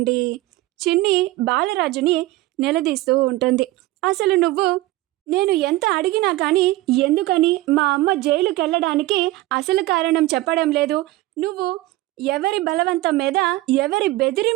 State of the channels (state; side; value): quieter; left; 18.0 dB